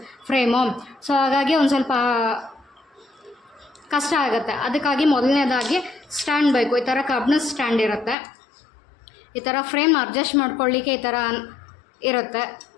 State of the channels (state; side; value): drops out; right; at 8.2 s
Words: ಫ್ರೇಮು. ಸೊ ಹಾಗಾಗಿ ಒಂದು ಸ್ವಲ್ಪ ಕಷ್ಟ ಆಗುತ್ತೆ. ಅದಕ್ಕಾಗಿ ಮೊದಲನೇದಾಗಿ ಸ್ಟ್ಯಾಂಡ್ ಬೇಕು. ಈ ಥರ ಕಬ್ಬಿಣದ ಸ್ಟ್ಯಾಂಡ್ ಇರುತ್ತೆ. ಈ ಥರ ಫ್ರೇಮ್ ಅಡ್ಜಸ್ಟ್ ಮಾಡ್ಕೊಳ್ಳಿಕ್ಕೆ ಈ ಥರ ಇರುತ್ತೆ,